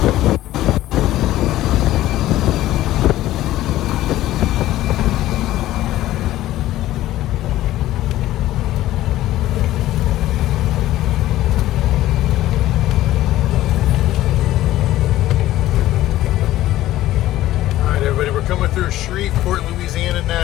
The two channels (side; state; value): right; quieter; 14.8 dB